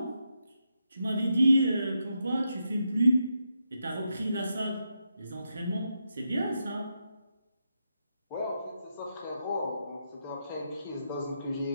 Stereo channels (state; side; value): inverted; both; correlation -0.84